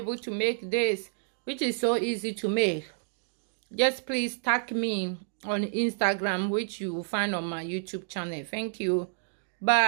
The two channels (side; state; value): left; silent; digital silence